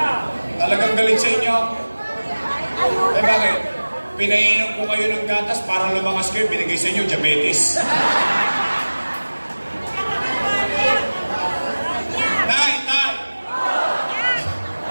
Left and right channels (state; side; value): inverted; both; correlation -1.00